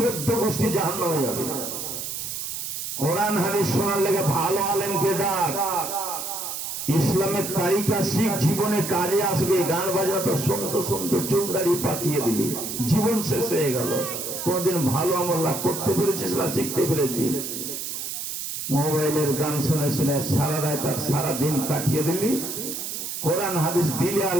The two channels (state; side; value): noise; right; hiss, 5 dB below the sound